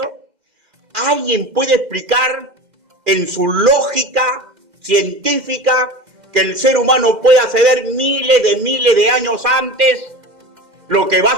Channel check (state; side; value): late; left; 2.1 ms